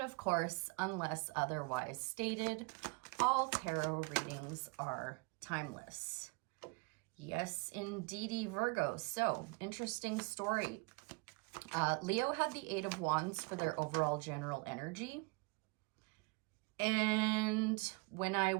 of course, unless otherwise stated, all tarot readings are timeless. Yes, indeedy, Virgo. So, interesting story. Leo had the Eight of Wands for their overall general energy. And when I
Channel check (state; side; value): quieter; left; 30.1 dB